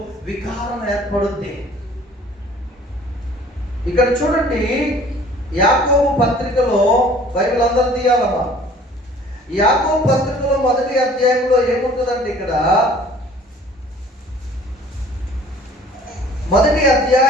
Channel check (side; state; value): both; normal; correlation 0.51